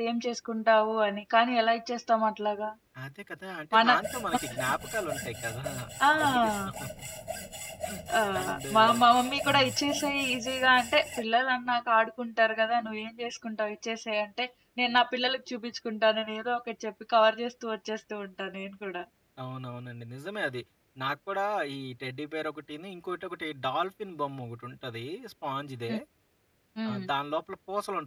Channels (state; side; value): identical; both; correlation 1.00